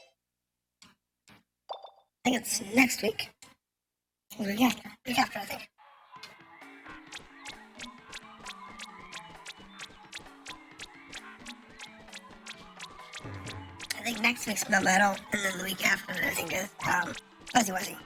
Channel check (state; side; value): identical; both; correlation 1.00